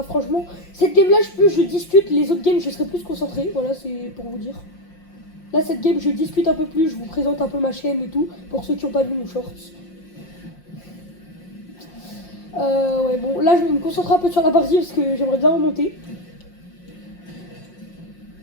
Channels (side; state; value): right; late; 5.6 ms